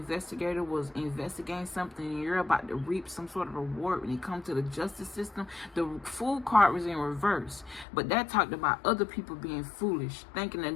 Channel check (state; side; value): drops out; right; at 7.9 s